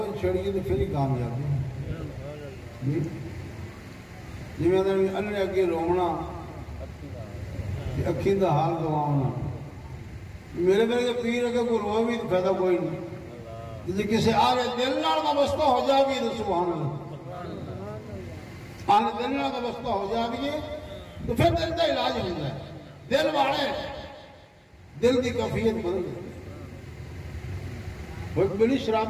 چھڑی تو پھر ہی کامیابی جی میں انہیں اگے رونا اکھی دا حال گواؤنا میرے میرے پیر اگر کوئی روئے بھی تو فائدہ کوئی نہیں جیسے کسی آرے دل نال وابستہ ہو جا بھی تو سبحان اللہ آنے دل نال وابستہ ہو جا بھی تو پھر دل کا علاج ہو جائے دل والے دل کی کیفیت بدل گئی وہ ایک بڑی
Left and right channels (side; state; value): both; identical; correlation 1.00